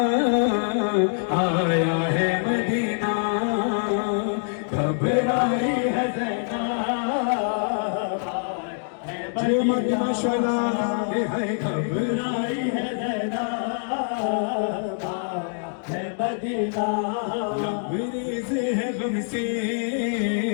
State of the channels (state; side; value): silent; right; digital silence